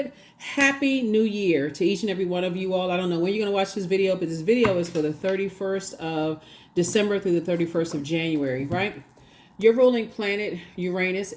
Happy New Year to each and every one of you all. I don't know when you're going to watch this video, but this video is for the 31st of December through the 31st of January, right? Your ruling planet, Uranus,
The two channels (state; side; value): identical; both; correlation 1.00